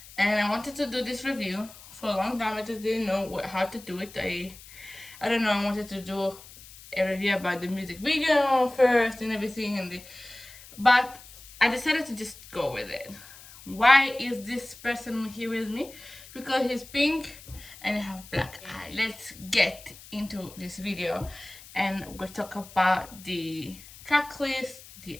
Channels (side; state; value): left; noise; hiss, 19 dB below the sound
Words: and I wanted to do this review for a long time. I just didn't know how to do it. I don't know. I wanted to do a review about the music video first and everything, but I decided to just go with it. Why is this person here with me? Because he's pink and I have black eye. Let's get into this video and we'll talk about the track list, the